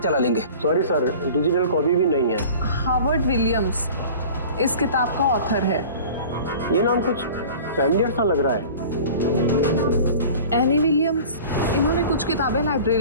लेंगे। सॉरी सर, डिजिटल कॉपी भी नहीं है। हार्वर्ड विलियम्स इस किताब का ऑथर है। ये नाम कुछ फैमिलियर सा लग रहा है। एनी विलियम्स, इन्होंने कुछ किताबें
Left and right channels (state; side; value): inverted; both; correlation -0.42